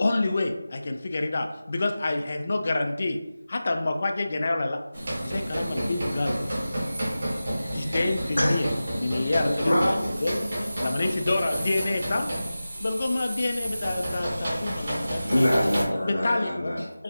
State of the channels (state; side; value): inverted; both; correlation -0.96